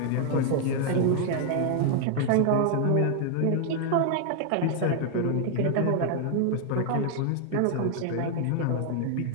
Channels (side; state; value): both; different; correlation 0.00